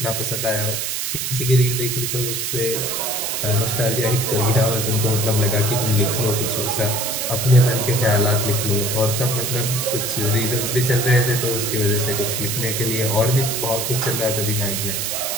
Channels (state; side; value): noise; right; hiss, 2 dB below the sound